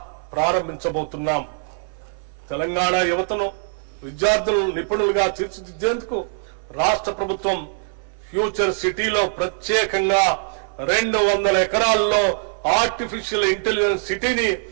ప్రారంభించబోతున్నాం. తెలంగాణ యువతను విద్యార్థులను నిపుణులుగా తీర్చిదిద్దేందుకు రాష్ట్ర ప్రభుత్వం ఫ్యూచర్ సిటీలో ప్రత్యేకంగా 200 ఎకరాల్లో ఆర్టిఫిషియల్ ఇంటెలిజెన్స్ సిటీని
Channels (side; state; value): left; silent; 57 dB below the other